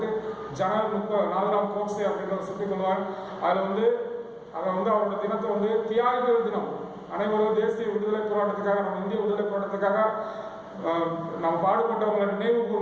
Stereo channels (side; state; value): both; identical; correlation 1.00